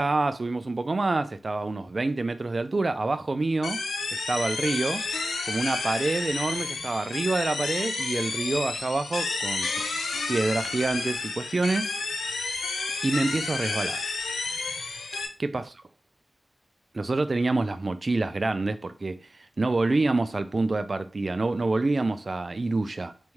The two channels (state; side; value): normal; both; correlation 0.93